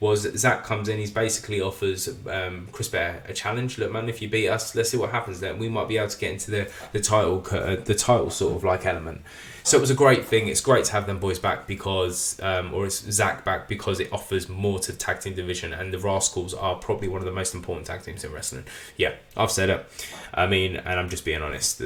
was Zach comes in, he's basically offers Chris Bear a challenge. Look, man, if you beat us, let's see what happens then. We might be able to get into the title sort of like element. So it was a great thing. It's great to have them boys back because, or it's Zach back, because it offers more to the tag team division, and the Rascals are probably one of the most important tag teams in wrestling. Yeah, I've said it. I mean, and I'm just being honest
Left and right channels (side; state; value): both; identical; correlation 1.00